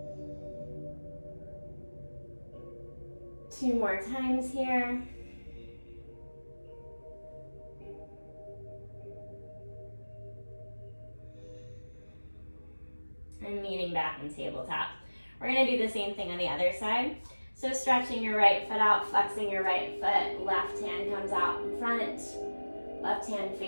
Two more times here. And meeting back in tabletop. We're gonna do the same thing on the other side. So stretching your right foot out, flexing your right foot, left hand comes out in front, left hand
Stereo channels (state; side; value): inverted; both; correlation -1.00